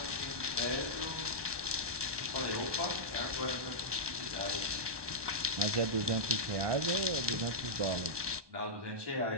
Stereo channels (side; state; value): left; late; 1.2 ms